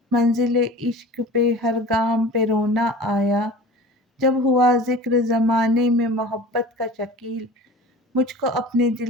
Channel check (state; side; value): normal; both; correlation 0.39